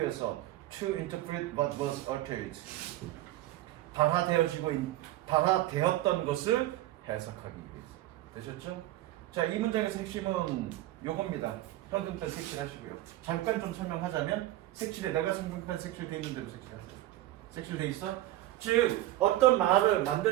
To interpret what was uttered. 발화되었던 것을 해석하기 위해서. 되셨죠? 자, 이 문장의 핵심은 요겁니다. 형용편 색칠하시고요. 잠깐 좀 설명하자면 색칠에 내가 형용편 색칠돼 있는 대로 색칠하세요. 색칠돼 있어? 즉 어떤 말을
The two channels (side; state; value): left; quieter; 15.3 dB